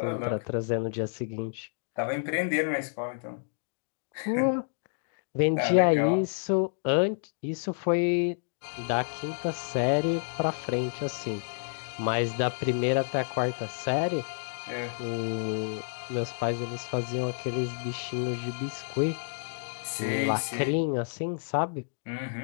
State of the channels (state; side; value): silent; right; digital silence